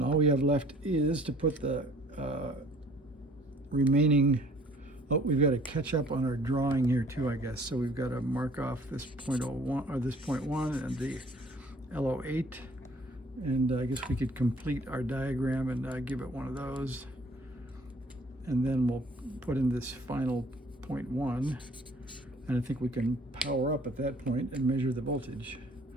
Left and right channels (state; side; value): normal; both; correlation 0.55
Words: all we have left is to put the remaining, oh, we've got to catch up on our drawing here too, I guess. So we've got to mark off this 0.01 or this 0.1 and the L08. And I guess we could complete our diagram and give it one of those. And then we'll put in this final 0.1. And I think we can power up at that point and measure the voltage.